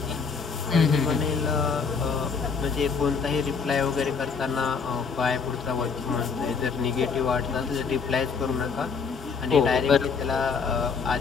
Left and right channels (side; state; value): right; quieter; 5.5 dB